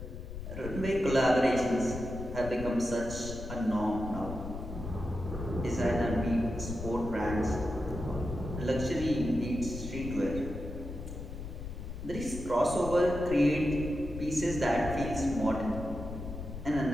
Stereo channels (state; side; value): noise; left; rumble, 9 dB below the sound